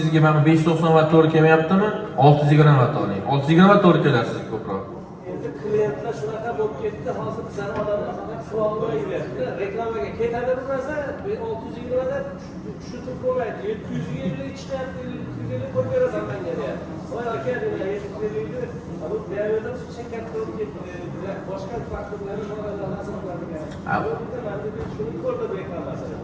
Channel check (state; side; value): identical; both; correlation 1.00